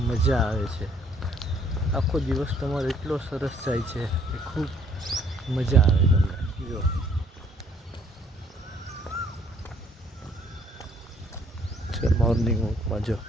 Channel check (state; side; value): normal; both; correlation 0.63